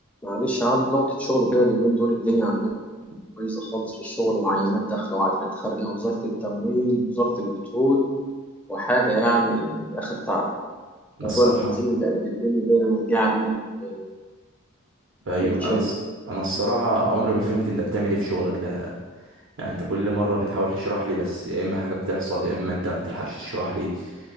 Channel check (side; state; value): both; normal; correlation 0.50